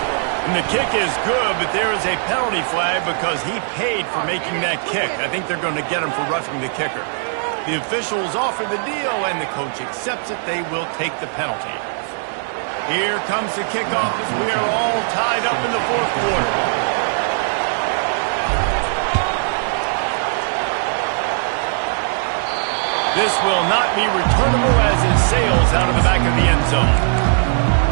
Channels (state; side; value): silent; left; digital silence